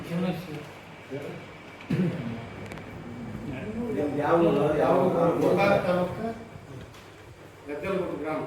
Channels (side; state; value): both; identical; correlation 1.00